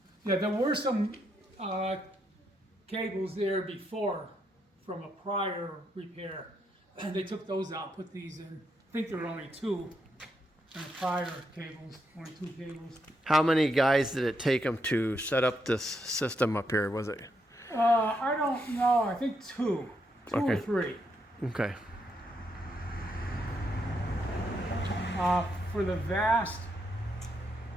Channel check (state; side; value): normal; both; correlation 0.79